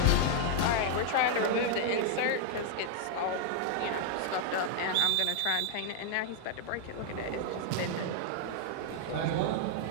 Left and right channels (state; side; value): different; both; correlation 0.00